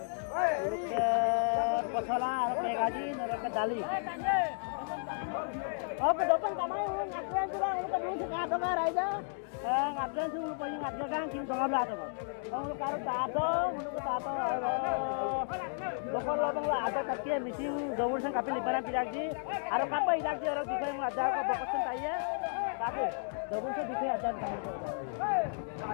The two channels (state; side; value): silent; right; digital silence